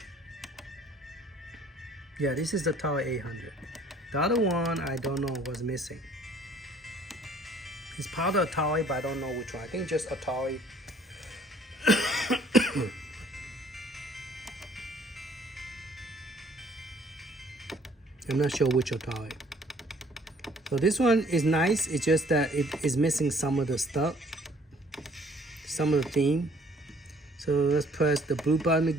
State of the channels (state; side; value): normal; both; correlation 0.58